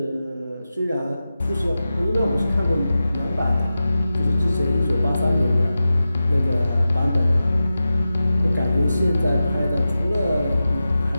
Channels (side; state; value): both; inverted; correlation -0.93